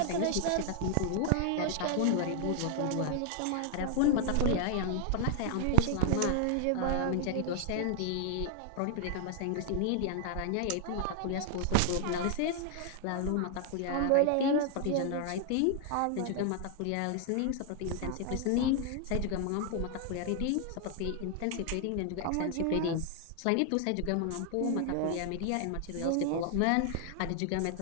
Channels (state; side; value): different; both; correlation 0.00